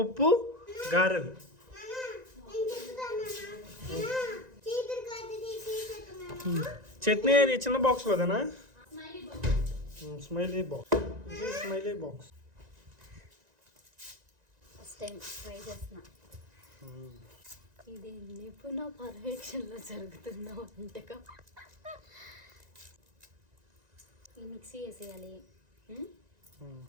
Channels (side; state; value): left; late; 1.9 ms